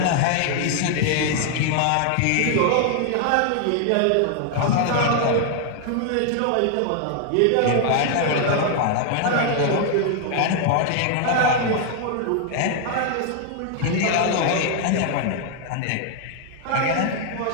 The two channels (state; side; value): different; both; correlation 0.00